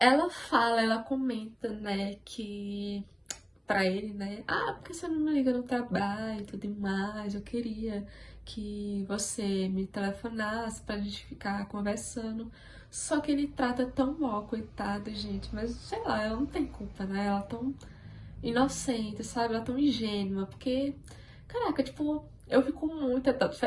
fala, ela comenta, né, que pra ele, né, por que você não me liga no trabalho e tudo mais? Eu queria que você me telefonasse pra gente ficar conversando. Só que ele trata tão mal, coitada, gente, mas sei lá, ela não tem culpa, né? Ela é tão inocente, sabe? Ela é tão ingênua, porque, caraca, tipo, eu fico muito.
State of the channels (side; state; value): both; identical; correlation 1.00